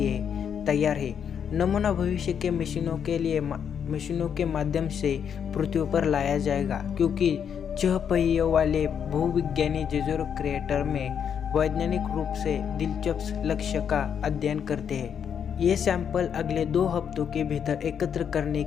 तैयार है। नमूना भविष्य के मिशनों के माध्यम से पृथ्वी पर लाया जाएगा, क्योंकि 6 पहियों वाले भूविज्ञानी जेजुरी क्रेटर में वैज्ञानिक रूप से दिलचस्प लक्ष्य का अध्ययन करते हैं। ये सैंपल अगले 2 हफ्तों के भीतर एकत्र करने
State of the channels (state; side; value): quieter; right; 7.9 dB